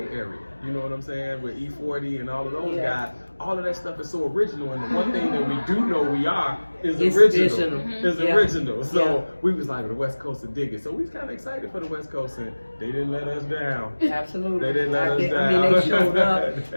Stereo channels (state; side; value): inverted; both; correlation -1.00